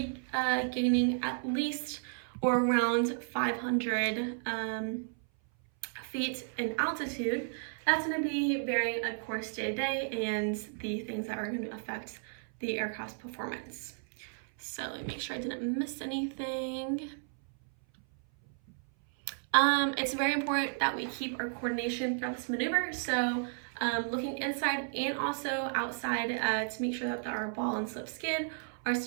gaining at least or around 500 feet in altitude. That's going to be varying, of course, day to day, and the things that are going to affect the aircraft's performance. So let me make sure I didn't miss anything. It's very important that we keep our coordination throughout this maneuver. So looking inside and also outside to make sure that our ball and slip skid are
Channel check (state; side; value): silent; left; 56 dB below the other